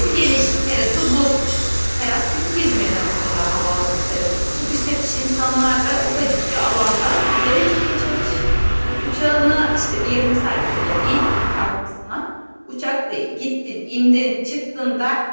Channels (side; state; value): both; inverted; correlation -1.00